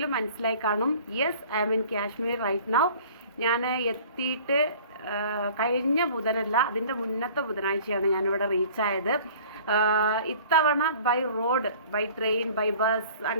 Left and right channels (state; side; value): inverted; both; correlation -0.48